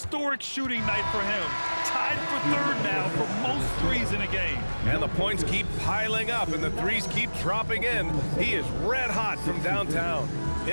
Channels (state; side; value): inverted; both; correlation -1.00